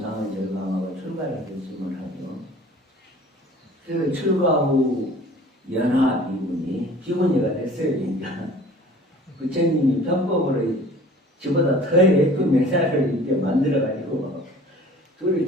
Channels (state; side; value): normal; both; correlation 0.47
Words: 절감하고 출가를 결심을 하죠. 그래서 출가 후 연하 비구니가 됐어요. 그러니까 부처님이 편법으로 저보다 더 예쁜 여자를 이렇게 만들어가지고 둘이